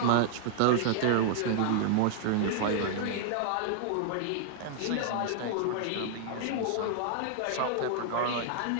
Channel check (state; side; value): different; both; correlation -0.01